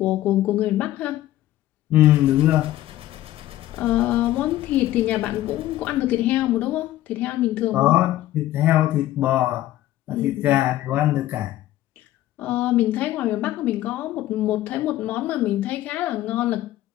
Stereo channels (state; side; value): quieter; right; 14.6 dB